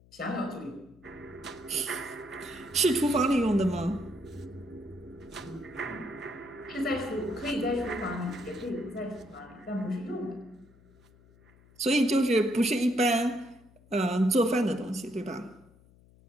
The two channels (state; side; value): noise; left; hum, 27 dB below the sound